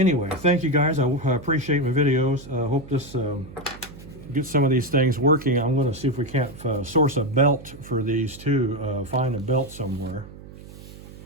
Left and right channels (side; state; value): right; noise; hum, 17 dB below the sound